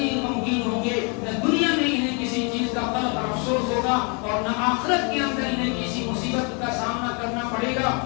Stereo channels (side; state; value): right; quieter; 34.5 dB